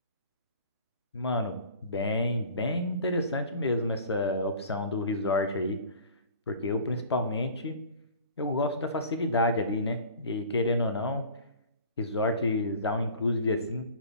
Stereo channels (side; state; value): both; inverted; correlation -0.44